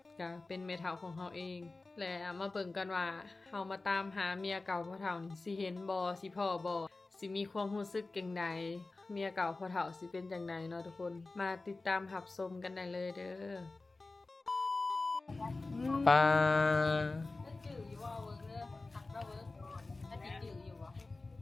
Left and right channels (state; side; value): quieter; right; 3.4 dB